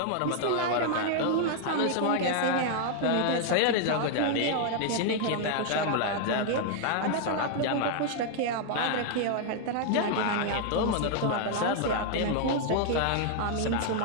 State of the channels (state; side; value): different; both; correlation 0.00